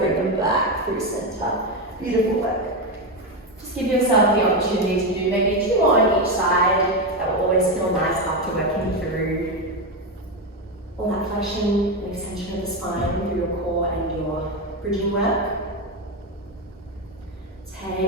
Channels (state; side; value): normal; both; correlation 0.12